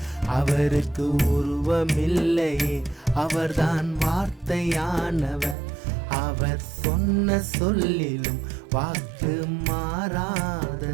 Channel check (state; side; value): drops out; left; at 5.6 s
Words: அவருக்கு உருவமில்லையே, அவர்தான் வார்த்தையானவர். அவர் சொன்ன சொல்லிலும் வாக்கு